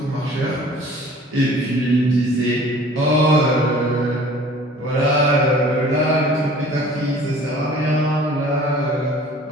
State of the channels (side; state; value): both; normal; correlation 0.49